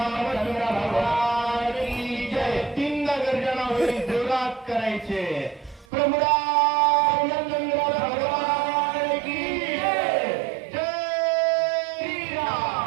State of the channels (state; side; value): drops out; left; at 5.9 s